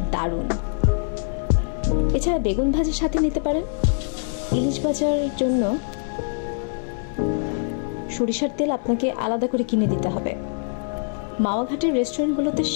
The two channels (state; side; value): silent; right; digital silence